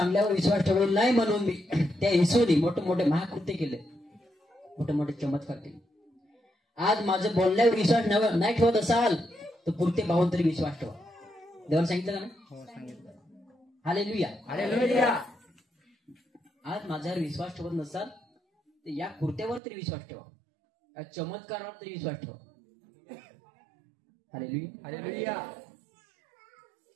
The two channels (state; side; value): drops out; left; at 19.6 s